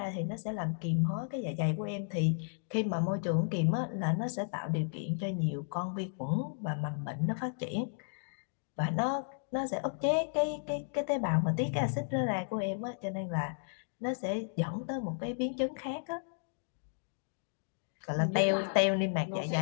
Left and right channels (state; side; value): silent; right; digital silence